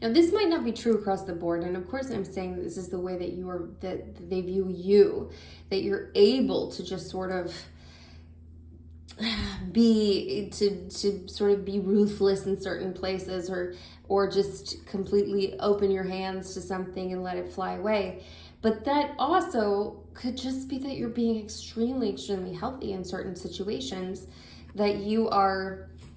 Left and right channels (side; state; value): both; identical; correlation 1.00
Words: Now, this might not be true across the board, and of course I'm saying that this is the way that that they view you, that you're able to just sort of be ruthless in certain places, or just completely open your hands to something and let it fly away. But that also could just be that you're being extremely, extremely healthy in certain situations, that you're